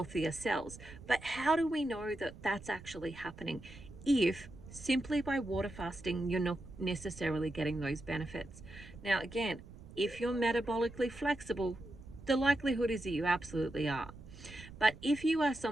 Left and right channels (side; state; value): right; noise; rumble, 17 dB below the sound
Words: cells. But how do we know that that's actually happening if simply by water fasting you're not necessarily getting those benefits? Now, again, if you're metabolically flexible, the likelihood is that you absolutely are. But if you are